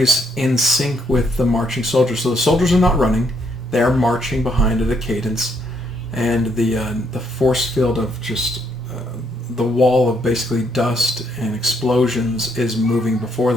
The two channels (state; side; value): normal; both; correlation 0.73